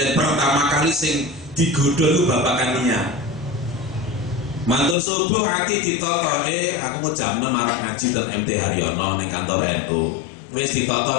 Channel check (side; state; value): right; drops out; at 5.0 s